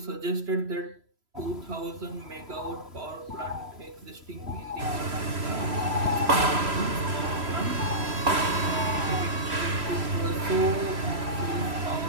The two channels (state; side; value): late; left; 3.0 ms